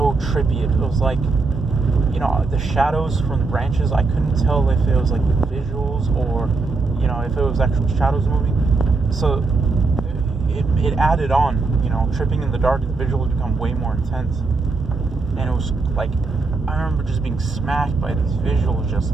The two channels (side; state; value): left; quieter; 3.9 dB